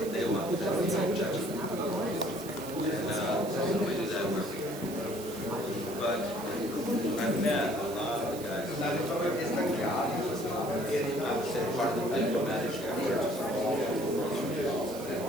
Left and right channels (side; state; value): right; noise; hiss, 14 dB below the sound